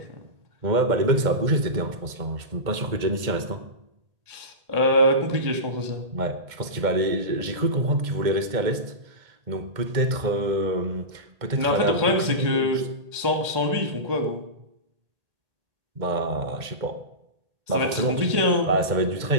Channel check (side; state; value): left; late; 2.1 ms